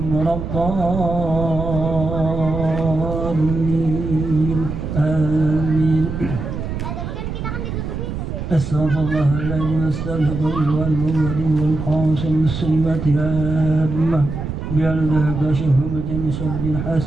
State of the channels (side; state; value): right; noise; rumble, 5 dB below the sound